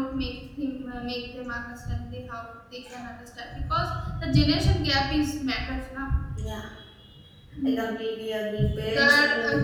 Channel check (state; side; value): identical; both; correlation 1.00